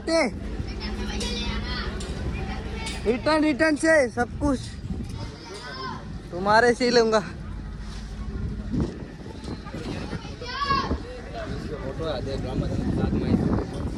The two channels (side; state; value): both; identical; correlation 1.00